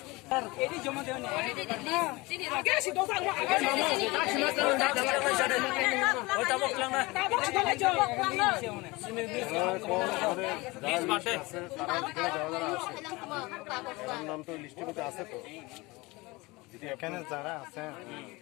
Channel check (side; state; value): right; quieter; 23.1 dB